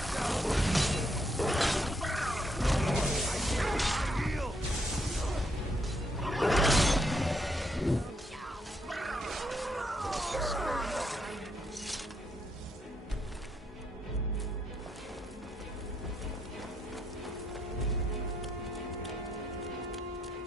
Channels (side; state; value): both; normal; correlation 0.76